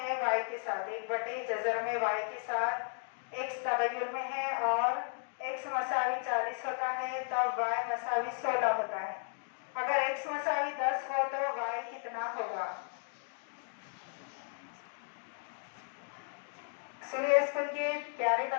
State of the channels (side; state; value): right; silent; 55 dB below the other